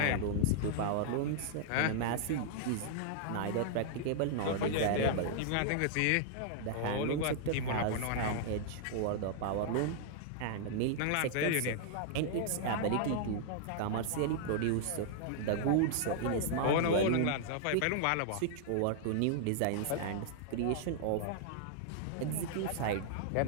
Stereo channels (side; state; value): both; different; correlation -0.01